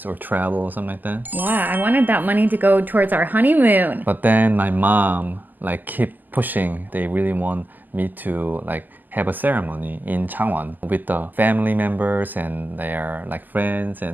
or travel or something like that. Yeah, I wanted that money to go towards our honeymoon. But then my mom like keep pushing. They really want me to like have a ceremony in Changwon with the family members and their like friends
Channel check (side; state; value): left; late; 0.086 ms